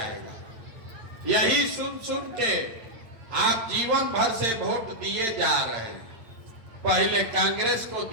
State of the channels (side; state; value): left; late; 8.9 ms